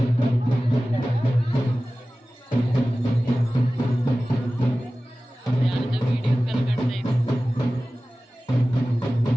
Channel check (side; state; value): both; normal; correlation 0.96